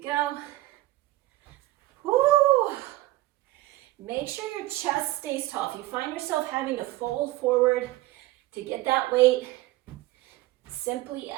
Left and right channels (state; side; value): quieter; left; 17.5 dB